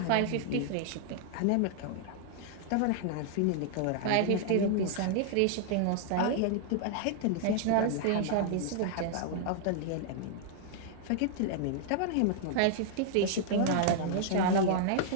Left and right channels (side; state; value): both; different; correlation -0.01